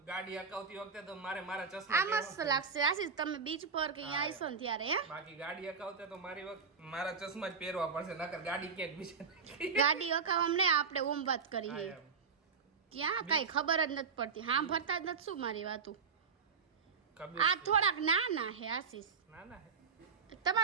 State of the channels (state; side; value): quieter; left; 5.7 dB